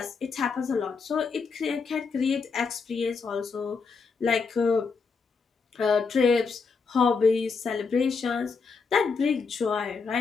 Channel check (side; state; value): right; quieter; 5.0 dB